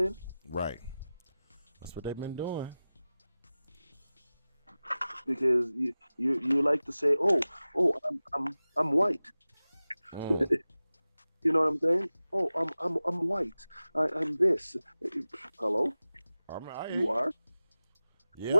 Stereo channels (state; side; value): inverted; both; correlation -0.96